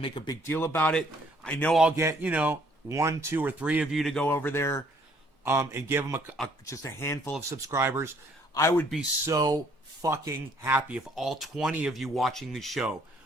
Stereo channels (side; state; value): both; normal; correlation 0.63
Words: a big deal about it. I know I'll get, 1, 2, or 3 of you to go over there and give him just a handful of subscribers. I would be so fucking happy if all 20 of you watching the show